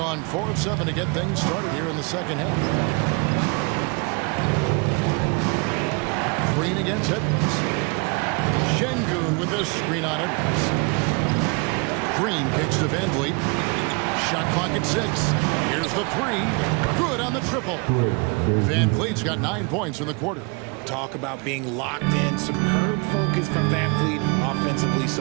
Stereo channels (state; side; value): quieter; left; 30.9 dB